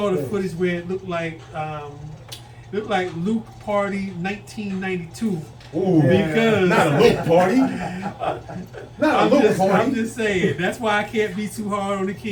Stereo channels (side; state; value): both; identical; correlation 1.00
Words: the footage where it looked like Luke Party 1992. Ooh, because not a Luke party. I'm just saying. That's why I can't be too hard on the